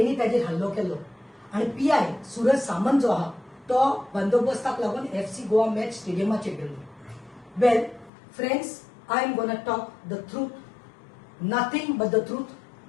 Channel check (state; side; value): drops out; right; at 8.1 s